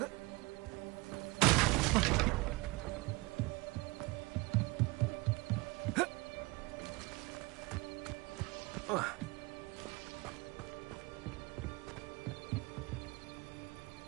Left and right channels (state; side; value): quieter; left; 24.2 dB